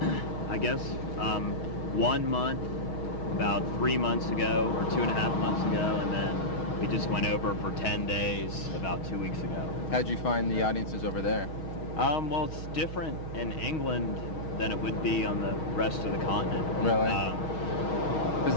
I guess, 1 month, about 3 months ago, or 2.5 months ago, and then we just went over for 10 days about 2 weeks ago. How'd you find the audiences over there? Well, it's different in England than it would be on the rest of the continent. Really? Because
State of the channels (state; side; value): late; right; 6.4 ms